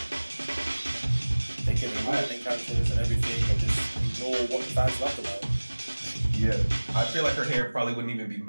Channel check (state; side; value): inverted; both; correlation -1.00